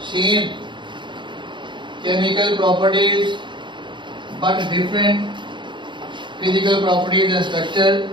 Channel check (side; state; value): left; late; 0.23 ms